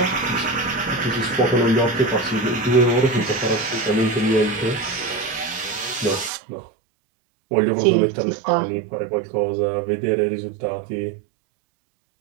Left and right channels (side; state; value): left; drops out; at 6.3 s